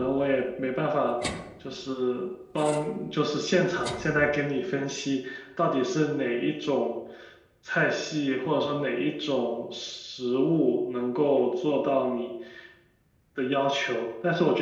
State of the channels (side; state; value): both; identical; correlation 1.00